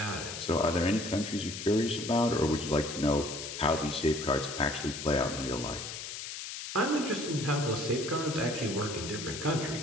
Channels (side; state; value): left; noise; hiss, 8 dB below the sound